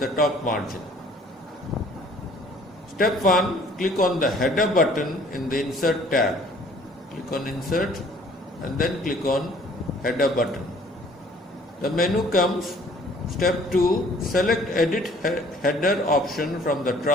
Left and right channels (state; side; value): normal; both; correlation 0.56